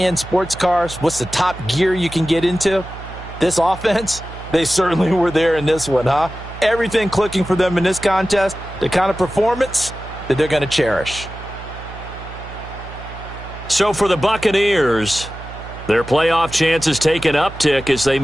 sports cars. What's the top gear you can get into? This offense, they certainly were there in this one, huh? Everything clicking for them in this contest, the kind of performance that they're going to cherish. So for the Buccaneers, their playoff chances take an uptick as they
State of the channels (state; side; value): noise; right; hum, 13 dB below the sound